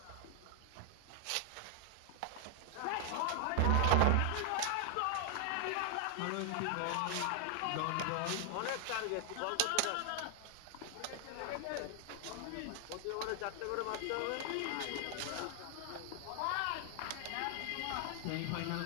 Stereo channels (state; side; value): different; both; correlation 0.00